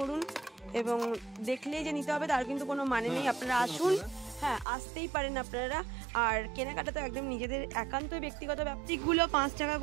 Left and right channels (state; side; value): drops out; left; at 4.7 s